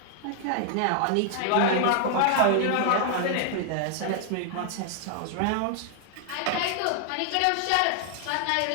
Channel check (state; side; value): different; both; correlation 0.00